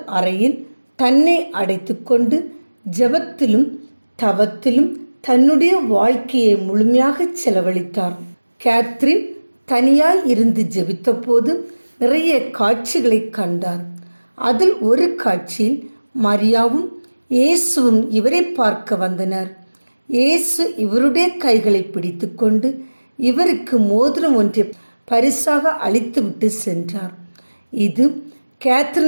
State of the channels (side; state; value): both; inverted; correlation -1.00